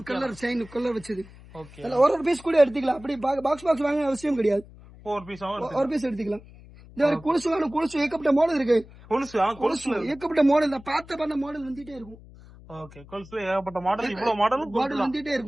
கலர் செயின் கலர் வச்சது. ஒரு பீஸ் கூட எடுத்துக்கலாம். அப்படி பாக்ஸ் வாங்க அவசியம் கிடையாது. ஒரு பீஸ் எடுத்துக்கலாம். இந்த மாதிரி கொலுசு ஏகப்பட்ட மாடல் இருக்கு. கொலுசு ஏகப்பட்ட மாடல் தான். பார்த்த மாடல் வந்துட்டே இருக்கும். ஓகே. கொலுசுல ஏகப்பட்ட மாடல். இவ்வளவு மாடல் வந்துட்டே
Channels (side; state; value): left; noise; hum, 20 dB below the sound